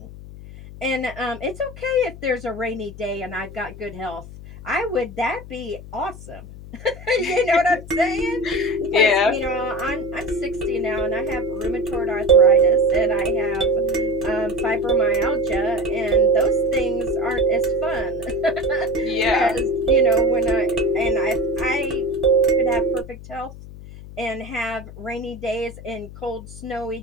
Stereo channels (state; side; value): noise; left; hum, 15 dB below the sound